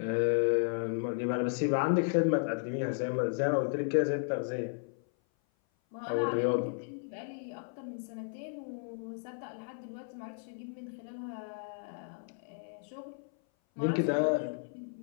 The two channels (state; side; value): silent; right; 55 dB below the other